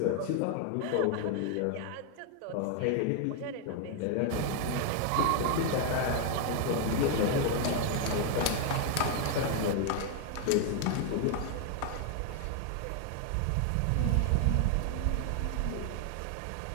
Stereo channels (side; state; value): both; different; correlation 0.00